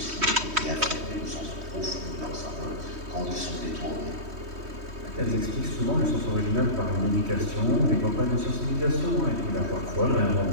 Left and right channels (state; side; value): late; left; 3.2 ms